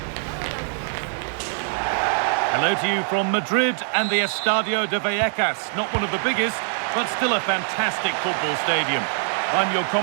Hello to you from Madrid and the Estadio de Vallecas. Not one of the biggest, but still a fantastic football stadium. I'm your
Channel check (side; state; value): left; silent; 63 dB below the other